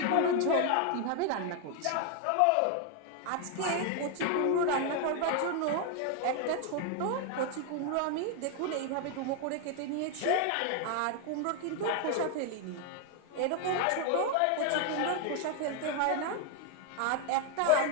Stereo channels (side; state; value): both; different; correlation 0.00